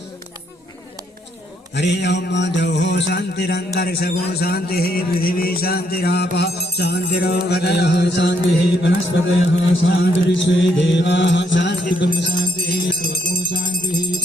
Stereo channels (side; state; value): both; normal; correlation 0.73